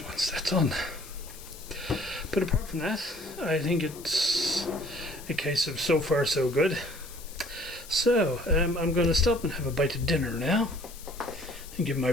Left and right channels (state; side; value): noise; left; hiss, 17 dB below the sound